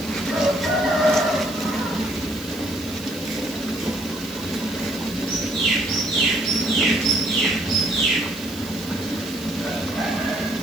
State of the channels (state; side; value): noise; right; hiss, 17 dB below the sound